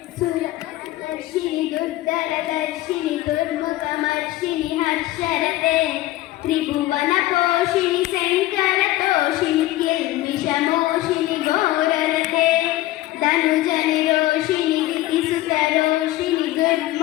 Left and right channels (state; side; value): quieter; right; 16.4 dB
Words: सुरदर्शिनि दुर्धरदर्शिनि दुर्मुखमर्शिनि हर्षरते त्रिभुवनपोषिणि शङ्करतोषिणि किल्बिषमोषिणि घोररते धनुजनिरोषिणि दितिसुतरोषिणि